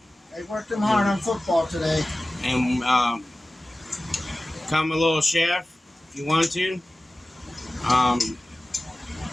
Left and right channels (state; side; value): normal; both; correlation 0.96